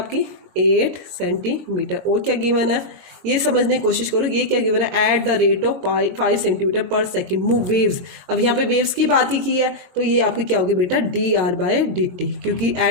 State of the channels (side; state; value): left; late; 22 ms